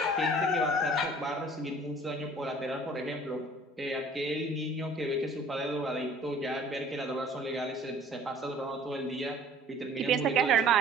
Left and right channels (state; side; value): normal; both; correlation 0.51